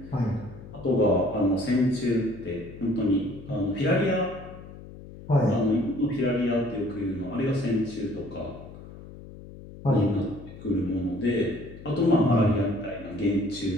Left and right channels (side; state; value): left; noise; hum, 16 dB below the sound